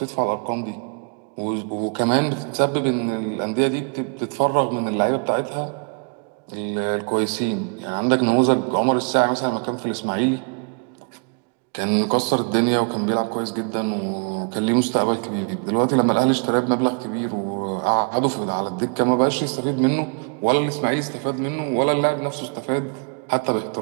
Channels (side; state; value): left; quieter; 36.6 dB